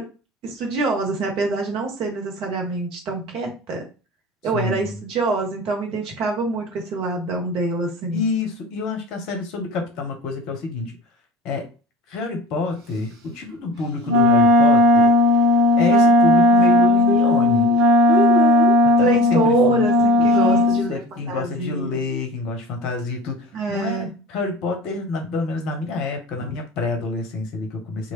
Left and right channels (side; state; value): both; normal; correlation 0.36